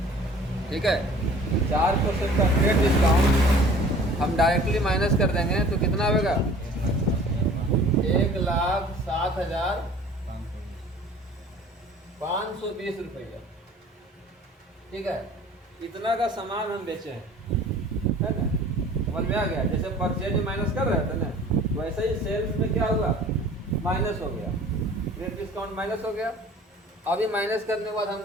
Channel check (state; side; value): normal; both; correlation 0.48